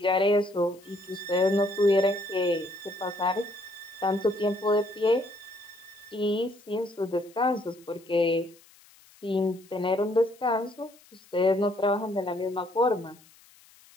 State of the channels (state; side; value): noise; left; hiss, 27 dB below the sound